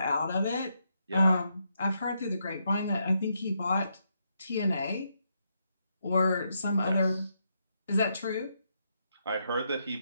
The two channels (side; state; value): both; inverted; correlation -0.79